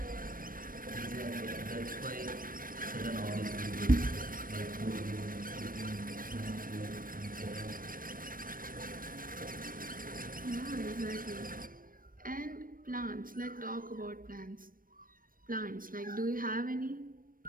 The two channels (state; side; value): late; left; 0.41 ms